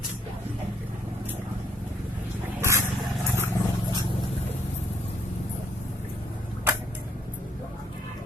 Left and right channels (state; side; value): normal; both; correlation 0.68